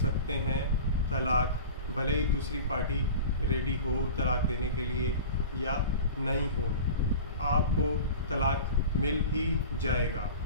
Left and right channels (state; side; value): inverted; both; correlation -0.36